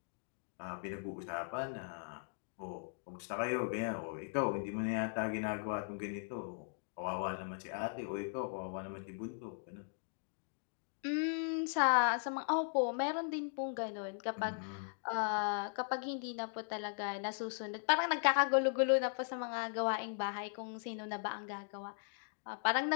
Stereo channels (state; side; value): silent; right; digital silence